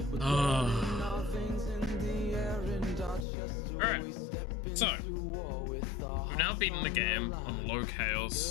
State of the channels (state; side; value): drops out; right; at 3.2 s